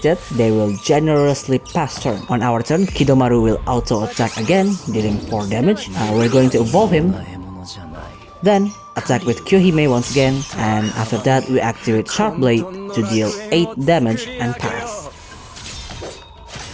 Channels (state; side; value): identical; both; correlation 1.00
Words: they will generously pass turn. On our turn, Kidoumaru will auto-attack again, dealing 4 damage. We're going to evolve him. Then, attack with Kyohime once again, and after that we activate Sharp Blade to deal 8 damage and pass.